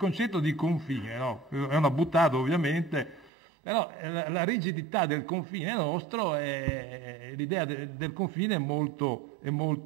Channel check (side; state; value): left; drops out; at 3.3 s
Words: di confine, no? È una buttata ovviamente, però la rigidità del confine nostro, l'idea del confine è molto